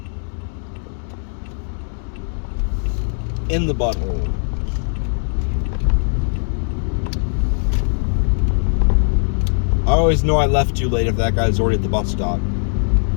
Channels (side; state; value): right; silent; 66 dB below the other